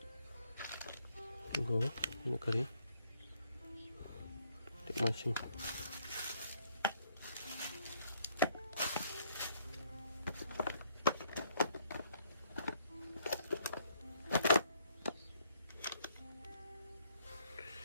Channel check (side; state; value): both; inverted; correlation -0.66